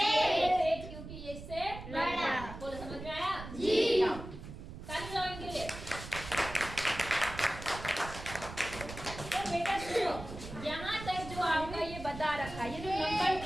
क्योंकि ये इससे बड़ा। बोलो, समझ में आया? जाओ, ताली बजाओ इनके लिए। तो बेटा सुनो, यहाँ तक जो आपका ये बता रखा, ये जो नंबर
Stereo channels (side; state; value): right; noise; rumble, 11 dB below the sound